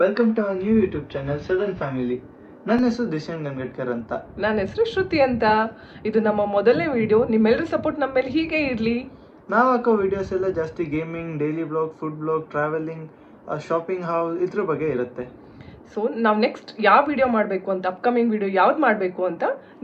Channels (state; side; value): identical; both; correlation 1.00